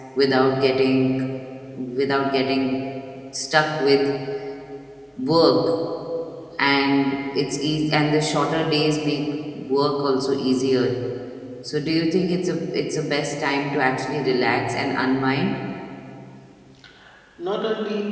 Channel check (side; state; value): both; identical; correlation 1.00